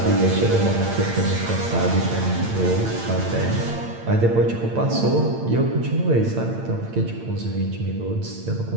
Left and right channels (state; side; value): late; left; 8.8 ms